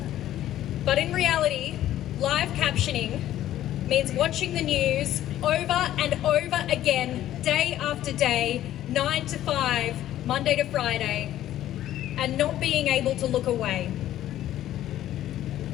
But in reality, live captioning means watching the news over and over again, day after day, 9 to 5, Monday to Friday, and not being able to look away.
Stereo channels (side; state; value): right; quieter; 12.9 dB